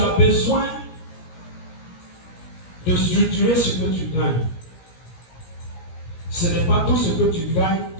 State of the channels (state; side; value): late; right; 17 ms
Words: besoin de structurer ce que tu gagnes. Ce n'est pas tout ce que tu gagnes